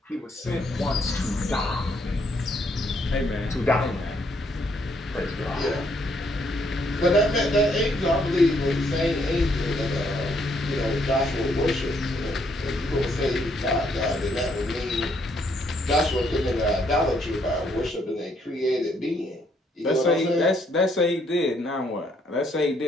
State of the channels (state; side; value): normal; both; correlation 0.71